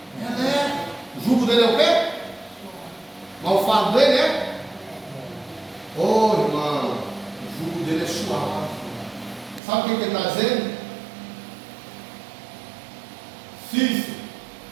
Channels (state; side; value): drops out; left; at 9.6 s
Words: é leve. O jugo dele é o quê? Mas o fardo dele é? Oh, irmão, o jugo dele é suave. Sabe o que ele está dizendo? Filho,